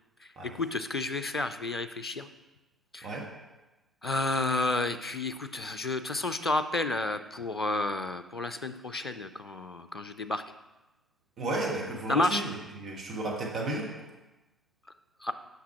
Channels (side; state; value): both; normal; correlation 0.56